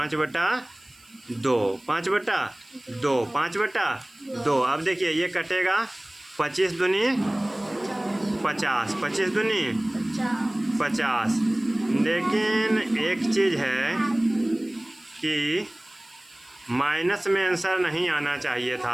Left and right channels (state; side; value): noise; right; hiss, 28 dB below the sound